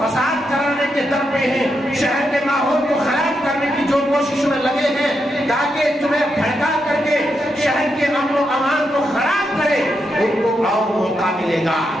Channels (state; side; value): normal; both; correlation 0.83